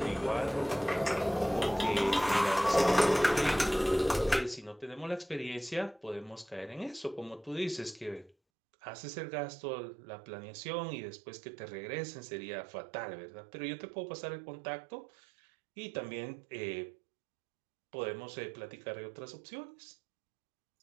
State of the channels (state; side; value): drops out; left; at 8.3 s